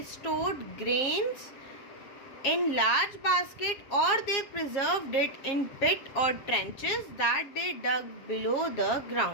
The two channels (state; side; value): late; right; 7.4 ms